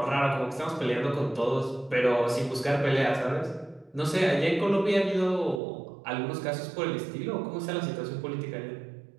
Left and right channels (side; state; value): left; drops out; at 5.6 s